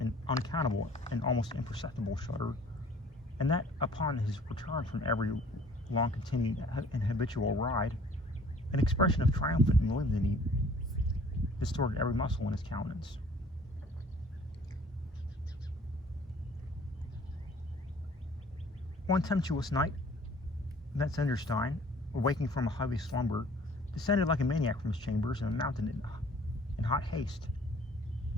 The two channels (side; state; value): both; normal; correlation 0.53